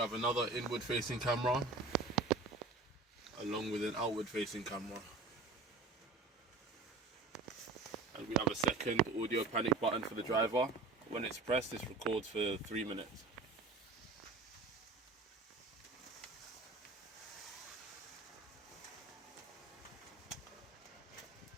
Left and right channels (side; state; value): left; quieter; 3.7 dB